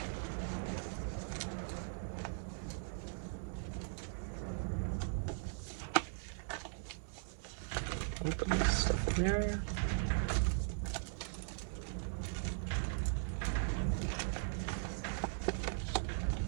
Open this stuff in there.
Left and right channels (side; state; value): left; silent; digital silence